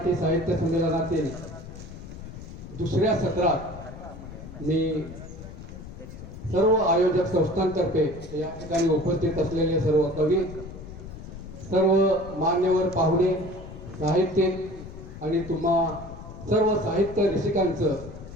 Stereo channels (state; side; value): noise; left; rumble, 13 dB below the sound